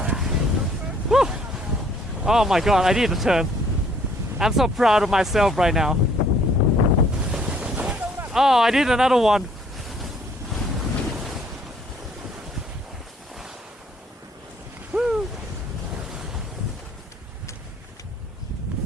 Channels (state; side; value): normal; both; correlation 0.61